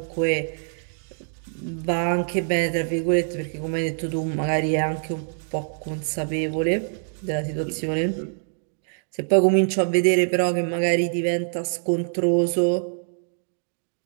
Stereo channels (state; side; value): silent; left; 62 dB below the other